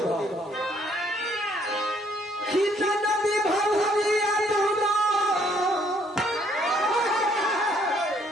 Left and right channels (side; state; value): both; normal; correlation 0.66